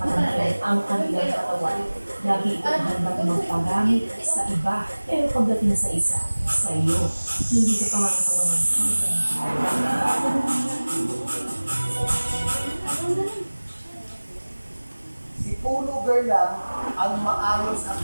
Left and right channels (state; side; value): inverted; both; correlation -1.00